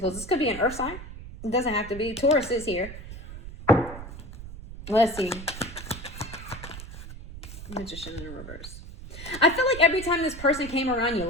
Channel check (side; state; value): right; noise; rumble, 12 dB below the sound